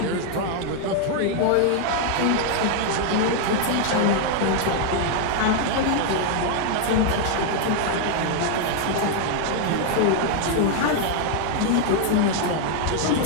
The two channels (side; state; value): both; different; correlation 0.00